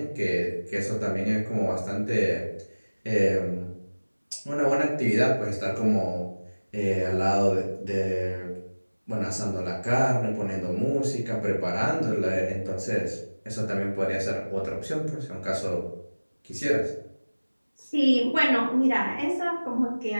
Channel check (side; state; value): both; inverted; correlation -1.00